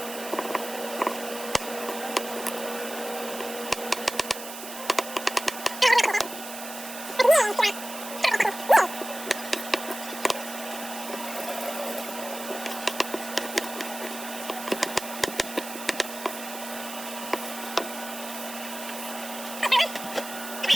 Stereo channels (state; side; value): noise; right; hiss, 10 dB below the sound